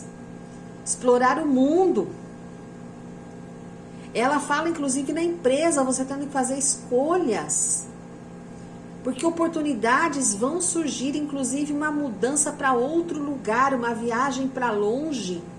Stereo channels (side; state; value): both; identical; correlation 1.00